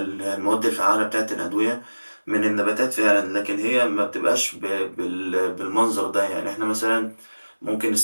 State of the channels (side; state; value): both; inverted; correlation -1.00